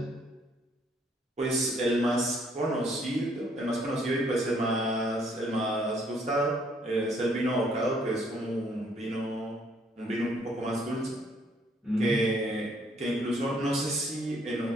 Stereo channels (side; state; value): both; normal; correlation 0.66